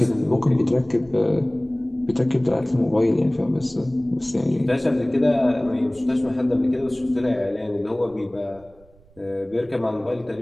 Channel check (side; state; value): right; noise; rumble, 28 dB below the sound